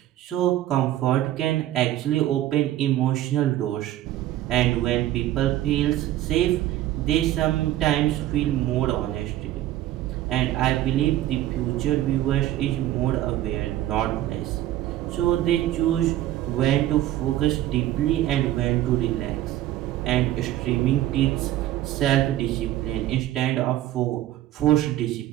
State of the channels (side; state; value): left; quieter; 13.8 dB